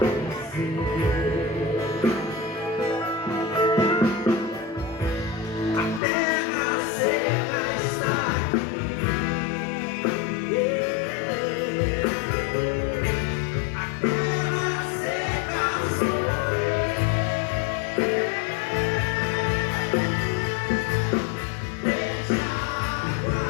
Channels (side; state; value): right; drops out; at 6.0 s